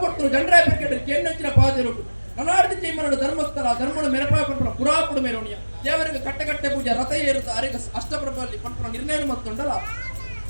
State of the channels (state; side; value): inverted; both; correlation -1.00